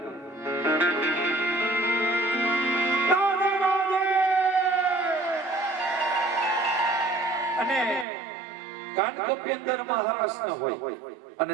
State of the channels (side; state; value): left; drops out; at 8.1 s